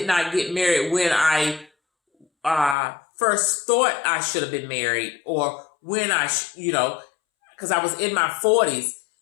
not get married when I first thought I should have been married or when because I was in my 40s,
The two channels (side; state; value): right; drops out; at 2.8 s